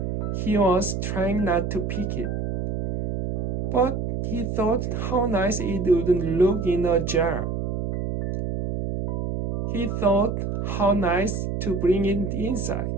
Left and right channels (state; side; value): noise; right; hum, 2 dB below the sound